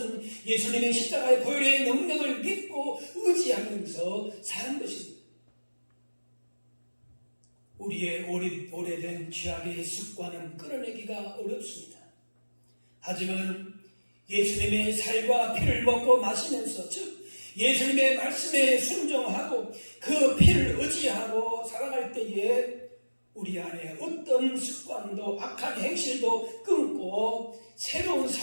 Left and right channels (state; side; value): inverted; both; correlation -1.00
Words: 예수님의 십자가의 보혈의 능력을 믿고 의지하면서 사는 것입니다. 우리의 오래된 죄악의 습관은 끊어내기가 어렵습니다. 하지만 예수님의 살과 피를 먹고 마시면서, 즉 예수님의 말씀에 순종하고 그 피를 의지하고 살아갈 때에 우리 안에 어떤 습관도 악한 행실도 끊고 새로운